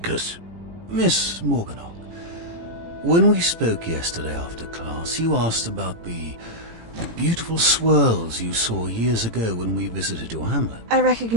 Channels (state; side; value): late; left; 18 ms